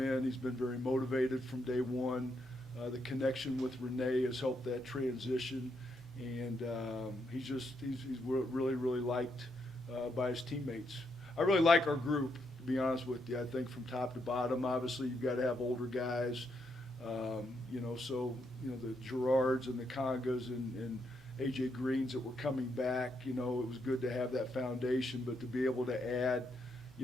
He's been very motivated from day one. The connection with Renee has helped that transition, and he's really liked by his teammates. I really like our group, to be honest with you. I think from top to bottom, obviously you've got to have older guys, the Gerards and the Congas and AJ Greens that were coming back. It was good to have that foundation, but to be able to add,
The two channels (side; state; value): both; normal; correlation 0.78